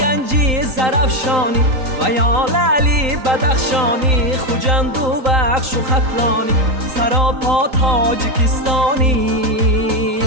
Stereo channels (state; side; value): late; left; 3.9 ms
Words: زرفشانی و یا لعلی بدخشانی خوجند و بخش و خطلانی سراپا تاجیکستانی